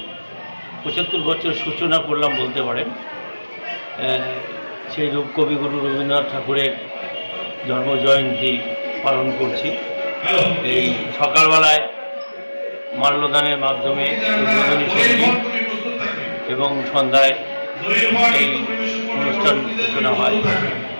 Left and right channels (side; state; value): both; inverted; correlation -1.00